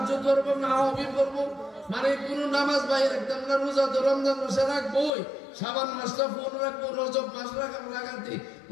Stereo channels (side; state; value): right; drops out; at 5.2 s